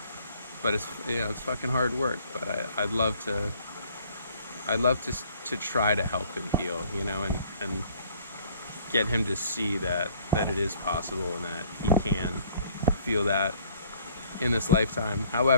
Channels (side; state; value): both; inverted; correlation -0.60